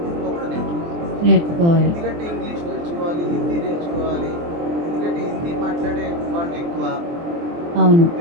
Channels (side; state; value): left; late; 24 ms